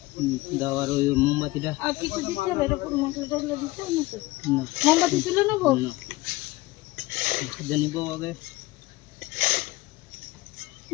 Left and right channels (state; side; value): quieter; right; 19.9 dB